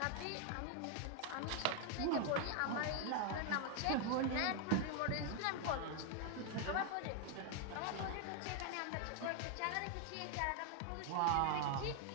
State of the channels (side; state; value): both; different; correlation 0.01